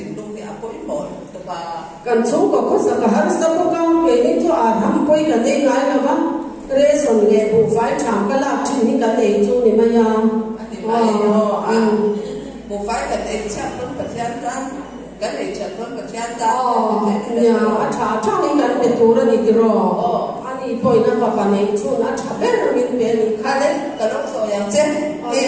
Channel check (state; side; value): identical; both; correlation 1.00